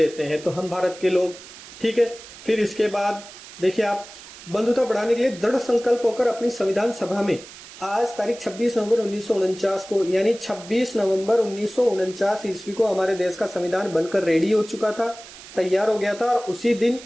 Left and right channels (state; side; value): noise; right; hiss, 17 dB below the sound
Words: हैं। तो हम भारत के लोग, ठीक है। फिर इसके बाद देखिए आप, बंधुता बढ़ाने के लिए दृढ़ संकल्प होकर अपनी संविधान सभा में आज तारीख 26 नवंबर 1949 को, यानी 26 नवंबर 1949 ईस्वी को हमारे देश का संविधान बनकर रेडी हो चुका था, तैयार हो गया था। और उसी दिन